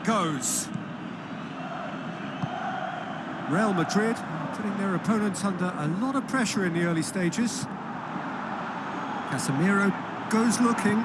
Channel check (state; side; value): identical; both; correlation 1.00